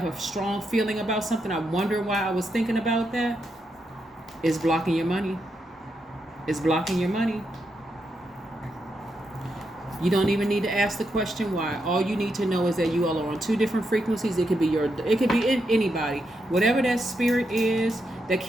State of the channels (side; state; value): both; normal; correlation 0.83